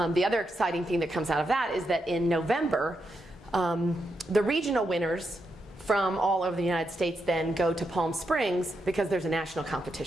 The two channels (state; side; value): normal; both; correlation 0.84